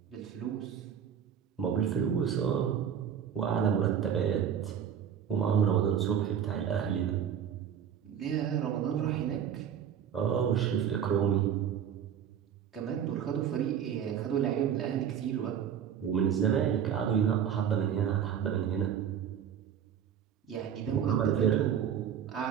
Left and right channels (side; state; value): left; quieter; 8.6 dB